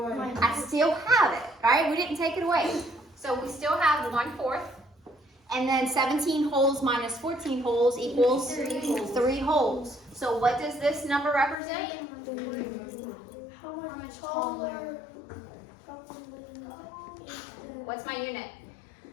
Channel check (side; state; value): right; drops out; at 11.6 s